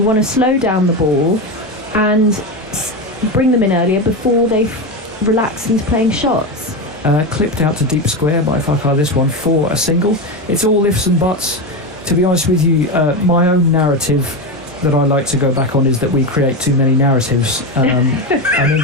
want to slow down the ball and bring them in earlier before they relax into playing shots. Clipped out to deep square by Fakhar, this one for a single. It's all ifs and buts. To be honest with you, my own narrative that I like to go back on is that we create too many narratives, and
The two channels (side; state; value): both; normal; correlation 0.16